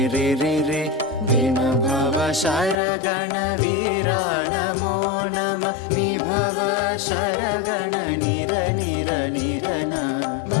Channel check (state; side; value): drops out; right; at 2.8 s